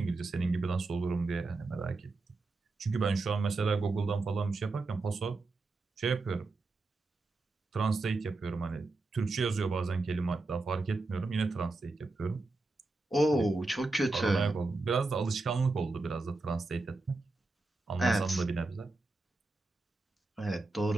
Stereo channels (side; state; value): left; quieter; 3.3 dB